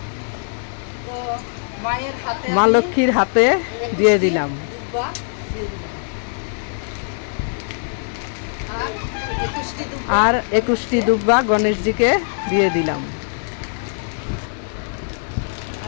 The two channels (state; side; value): silent; right; digital silence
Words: মায়ের হাতে মা লক্ষ্মীর হাতে দিয়ে দিলাম। আর 21টি দুব্বা গণেশজিকে দিয়ে দিলাম।